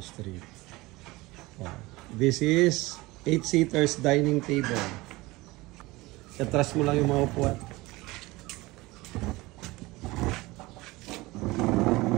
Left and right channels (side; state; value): left; quieter; 21.2 dB